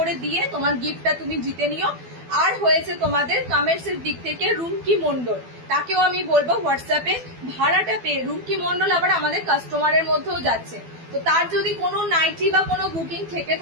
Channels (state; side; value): late; left; 12 ms